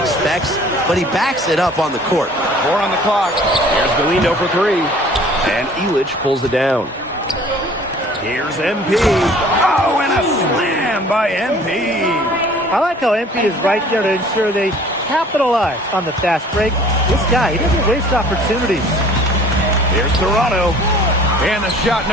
but he backs it up on the court. 4 on the clock. Here's Galindo for 3. And Ilic pulls it down. Here's MP. Oh, and a slam by MP. I like how MP is right there to ensure they capitalize on the fast break. This guy, he doesn't waste opportunities. Here's Serrano. And the shot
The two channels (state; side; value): normal; both; correlation 0.51